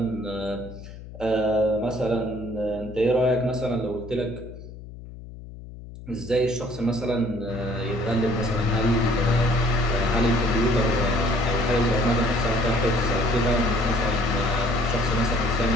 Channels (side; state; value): left; noise; hum, 15 dB below the sound